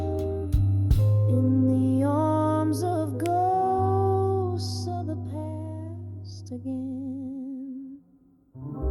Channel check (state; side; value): identical; both; correlation 1.00